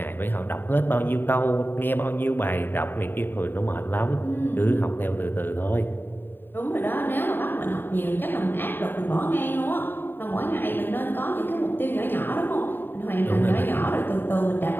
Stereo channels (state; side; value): late; right; 0.095 ms